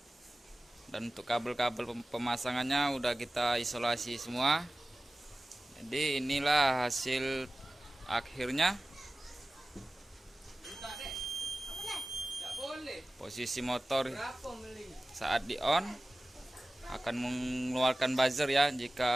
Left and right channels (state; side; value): normal; both; correlation 0.96